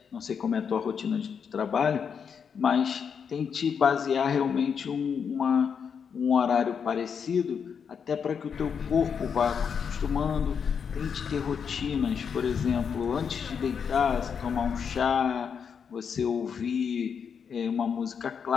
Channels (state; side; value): quieter; right; 6.8 dB